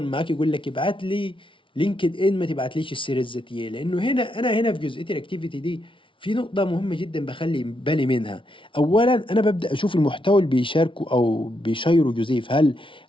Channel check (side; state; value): right; late; 0.25 ms